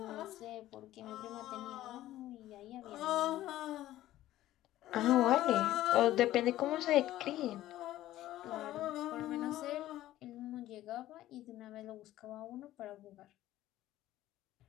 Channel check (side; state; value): right; quieter; 14.5 dB